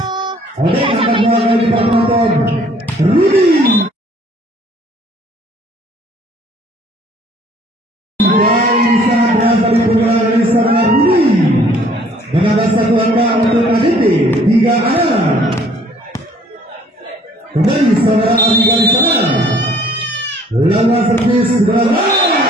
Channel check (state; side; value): normal; both; correlation 0.58